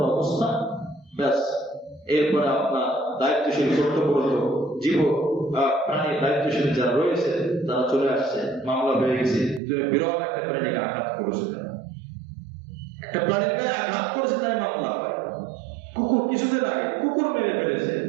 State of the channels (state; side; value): drops out; left; at 9.6 s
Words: অবস্থা, ব্যাস। এরপরে আপনার দায়িত্বশীল কর্তব্যরত জীব প্রাণী দায়িত্বশীল যারা রয়েছে তারা চলে আসছে, মামলা হয়ে গেছে। তুমি বিরল একটা প্রাণীকে আঘাত করেছে, একটা প্রাণীর গায়ে আঘাত করেছে, তাই মামলা হয়। কুকুর কিছুদিন আগে কুকুর মেরে ফেলেছে,